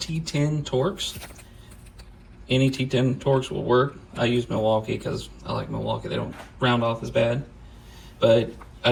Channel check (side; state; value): both; identical; correlation 1.00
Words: Torx. Any T10 Torx will work. I use Milwaukee because I like Milwaukee. They don't round off as bad. But